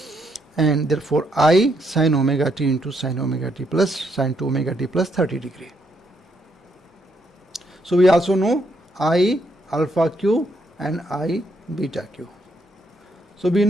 And therefore I sin omega t into sin omega t plus sin 2 omega t plus 30 degree. So we also know I alpha q and I beta q. So we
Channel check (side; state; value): both; normal; correlation 0.75